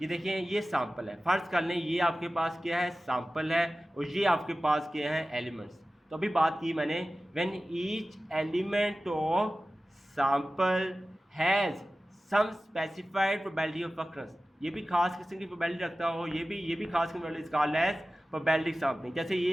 ये देखें ये सैंपल है। फ़र्ज़ कर लें ये आपके पास क्या है, सैंपल है, और ये आपके पास क्या है, एलिमेंट्स। तो अभी बात की मैंने, when each element of sample has some specified probability of occurrence, ये भी खास किस्म की प्रोबेबिलिटी रखता हो, ये भी खास किस्म की कॉल्ड एज प्रोबेबिलिटी सैंपलिंग। जैसे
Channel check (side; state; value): both; normal; correlation 0.96